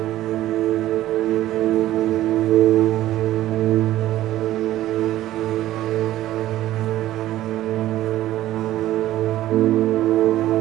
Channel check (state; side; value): quieter; left; 14.3 dB